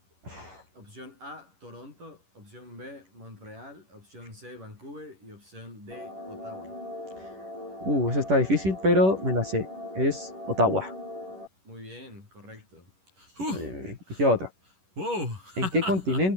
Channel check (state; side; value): late; left; 11 ms